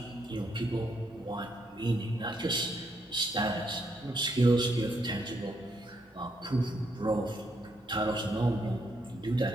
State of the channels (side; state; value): both; normal; correlation 0.76